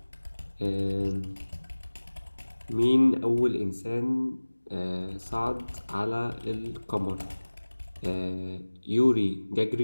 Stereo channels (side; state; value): both; inverted; correlation -1.00